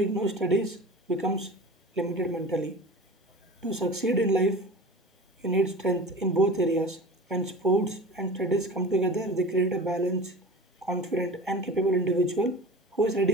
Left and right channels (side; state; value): both; normal; correlation 0.35